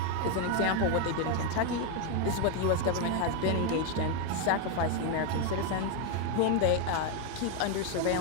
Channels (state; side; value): different; both; correlation 0.02